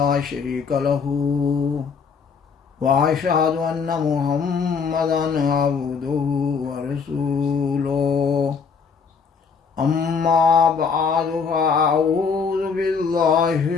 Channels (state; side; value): quieter; right; 5.7 dB